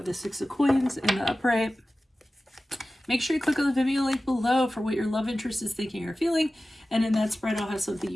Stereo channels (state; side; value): normal; both; correlation 0.95